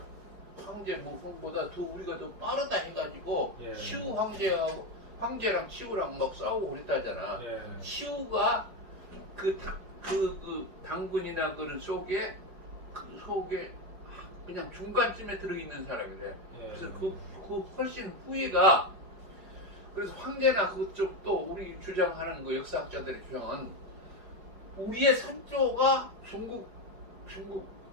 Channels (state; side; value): late; left; 5.2 ms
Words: 황제 모성보다 더 우리가 더 빠르다 해가지고 예. 시우 황제랑 시우랑 막 싸우고 그랬다잖아. 예. 시우가 그 당군이나 그런 속에 그냥 중간쯤에 들어있는 사람이래. 예. 그래서 그 훨씬 후에가, 그래서 황제나 그쪽 또 우리 주장하는 그 역사학자들의 주장은 우리의 선조가 중국